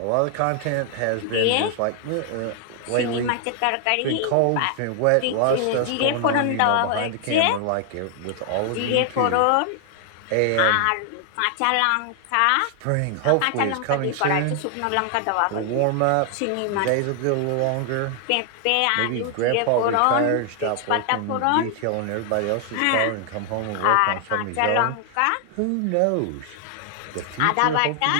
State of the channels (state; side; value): different; both; correlation 0.00